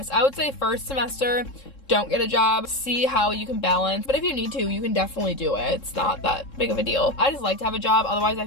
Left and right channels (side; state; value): right; late; 3.7 ms